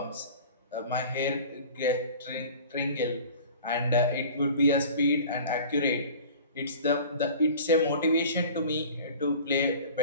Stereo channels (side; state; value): both; inverted; correlation -0.42